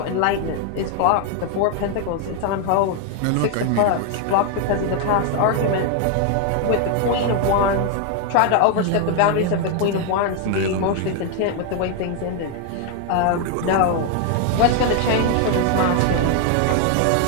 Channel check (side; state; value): both; different; correlation 0.00